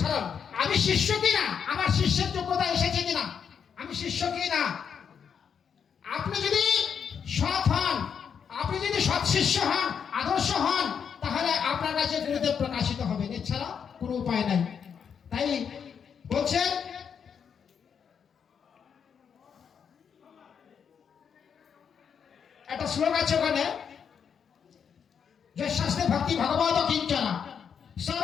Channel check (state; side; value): quieter; right; 7.2 dB